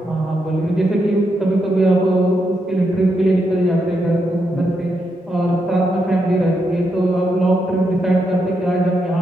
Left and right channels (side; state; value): both; normal; correlation 0.82